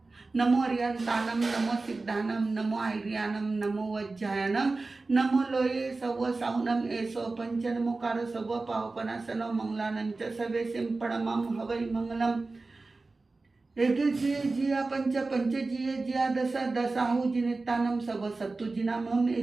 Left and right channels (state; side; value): quieter; left; 3.6 dB